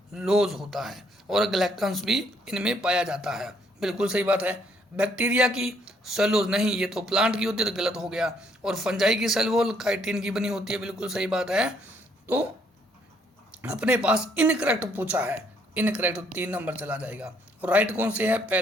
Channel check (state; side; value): normal; both; correlation 0.68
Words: होता है, और ग्लैक्टन्स भी इनमें पाया जाता है, बिल्कुल सही बात है। बैक्टीरिया की सेलुलोज नहीं, ये तो प्लांट की होती है, तो गलत हो गया। और फंजाई की सेल वॉल काइटिन की बनी होती है, बिल्कुल सही बात है। तो अपने पास इनकरेक्ट पूछा है, इनकरेक्ट 3 नंबर चला जाएगा। और राइट कौन से है,